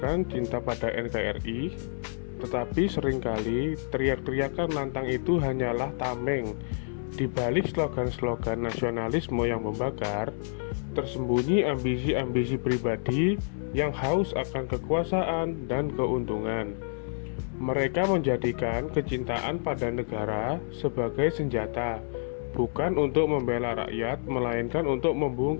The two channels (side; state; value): right; silent; digital silence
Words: cinta pada NKRI, tetapi seringkali teriak-teriakan lantang itu hanyalah tameng. Di balik slogan-slogan nasionalisme yang membakar, tersembunyi ambisi-ambisi pribadi yang haus akan kekuasaan dan keuntungan. Mereka menjadikan kecintaan pada negara sebagai senjata, bukan untuk membela rakyat, melainkan untuk